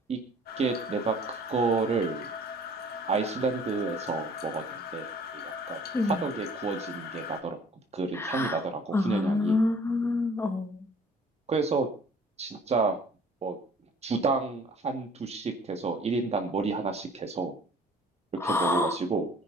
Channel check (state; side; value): normal; both; correlation 0.53